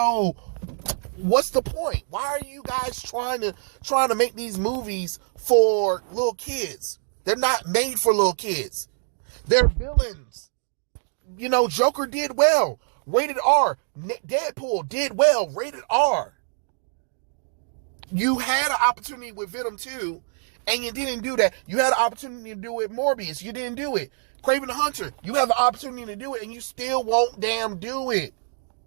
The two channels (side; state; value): left; silent; digital silence